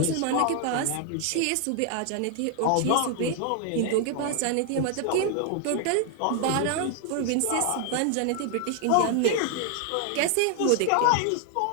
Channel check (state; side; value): different; both; correlation 0.00